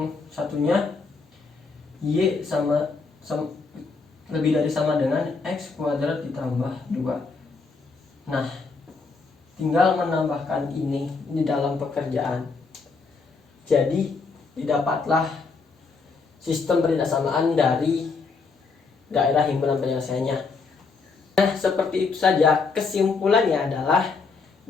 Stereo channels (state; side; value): quieter; right; 4.5 dB